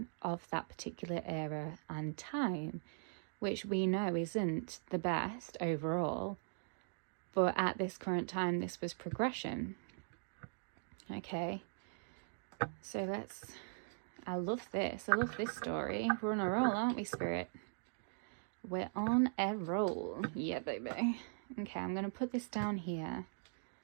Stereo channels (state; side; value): silent; left; digital silence